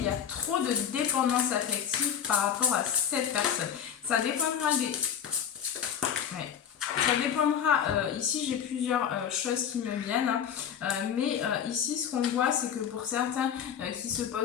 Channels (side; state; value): right; quieter; 8.5 dB